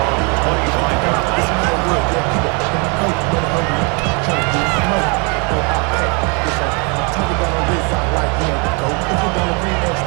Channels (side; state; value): left; quieter; 33.4 dB